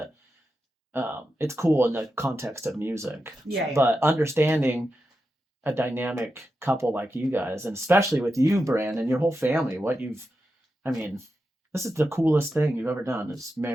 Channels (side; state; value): both; normal; correlation 0.89